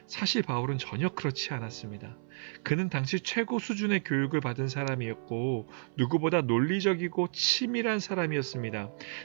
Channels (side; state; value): left; silent; 55 dB below the other